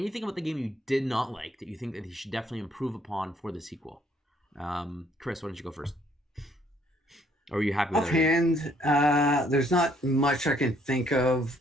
about the game you did not like that you think that he should definitely improve upon for the sequel? Chris, why don't you go first? Or are you happy with offhand? There's not much I can think of.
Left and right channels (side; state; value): both; normal; correlation 0.65